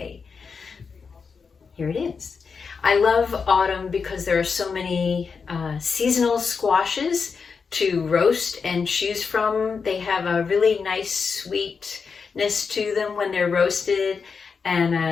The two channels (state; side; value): quieter; right; 5.4 dB